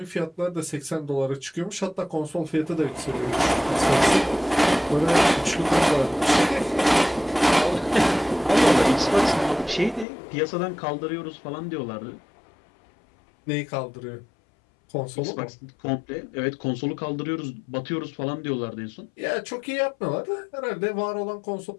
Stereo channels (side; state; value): right; drops out; at 10.1 s